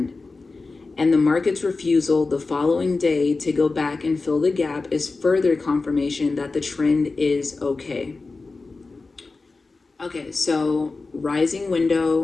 And the market's refusal the following day to go back and fill the gap is further confirmation that the trend is okay. Okay, so rising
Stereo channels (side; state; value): right; quieter; 3.8 dB